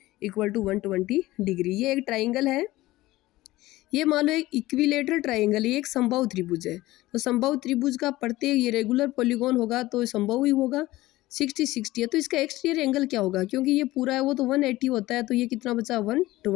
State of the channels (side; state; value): right; quieter; 17.7 dB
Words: इक्वल टू 120 डिग्री। ये एक ट्राइंगल है, ये मान लो एक इक्विलेटरल ट्राइंगल, ये एक समबाहु त्रिभुज है। तो समबाहु त्रिभुज का प्रत्येक ये रेगुलर पॉलीगॉन होगा तो समबाहु ही होगा, 60 है। तो इसका एक्सटीरियर एंगल क्या होगा, क्योंकि ये पूरा है वो तो 180 होता है, तो ये कितना बचा